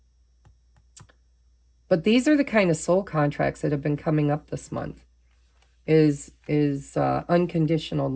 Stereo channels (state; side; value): identical; both; correlation 1.00